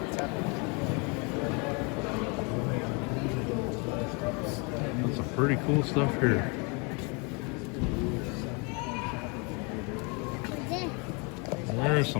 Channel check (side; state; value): right; quieter; 32.0 dB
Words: That's some pretty cool stuff here. There's